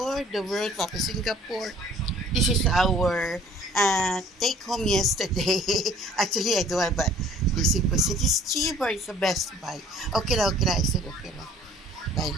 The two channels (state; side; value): normal; both; correlation 0.53